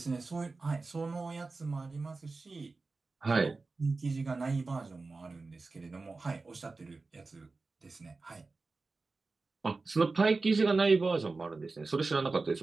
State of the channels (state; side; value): quieter; left; 3.8 dB